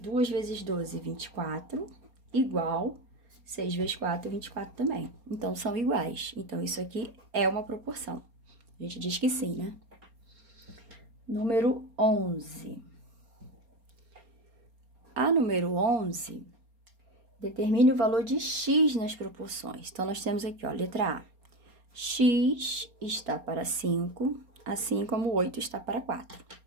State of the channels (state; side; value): late; left; 4.3 ms